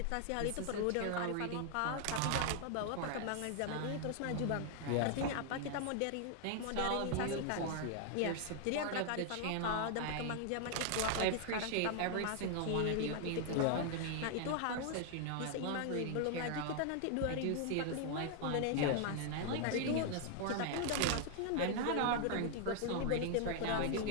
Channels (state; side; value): different; both; correlation 0.00